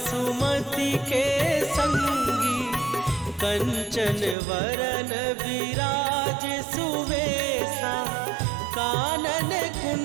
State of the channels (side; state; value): left; drops out; at 4.4 s